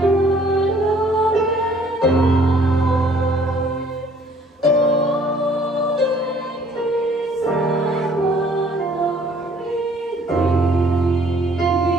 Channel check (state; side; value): normal; both; correlation 0.59